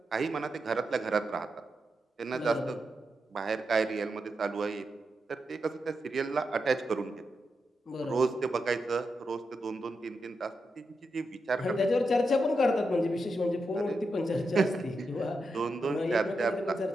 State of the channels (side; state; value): both; normal; correlation 0.86